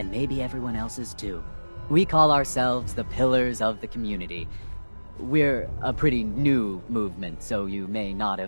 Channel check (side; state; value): both; inverted; correlation -1.00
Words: maybe everyone else's too. We call ourselves the pillars of the community. We're a pretty new movement, so you may not